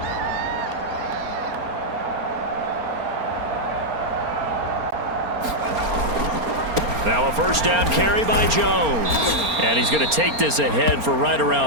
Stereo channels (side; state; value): left; late; 4.3 ms